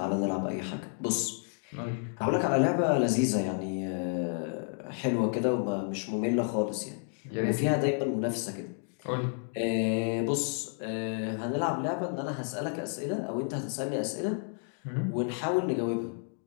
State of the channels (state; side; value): silent; right; 57 dB below the other